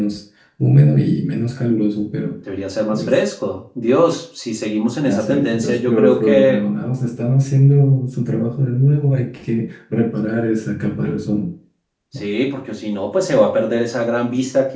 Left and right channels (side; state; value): both; identical; correlation 1.00